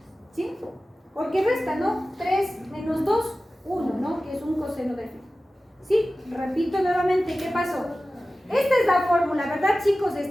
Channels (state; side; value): normal; both; correlation 0.96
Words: ¿Sí? Porque resta, ¿no? 3 menos 2, 1, ¿no? Que es un coseno de phi. ¿Sí? Repito nuevamente, ¿qué pasó? Esta es la fórmula, ¿verdad, chicos?